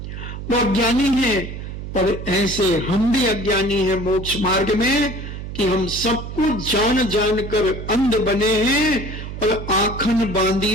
वो अज्ञानी है। पर ऐसे हम भी अज्ञानी हैं मोक्ष मार्ग में, कि हम सब कुछ जान जान कर अंध बने हैं, और आखन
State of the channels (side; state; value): right; noise; hum, 9 dB below the sound